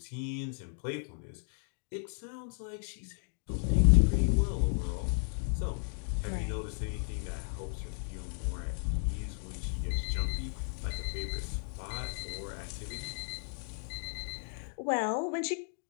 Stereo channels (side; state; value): right; silent; 55 dB below the other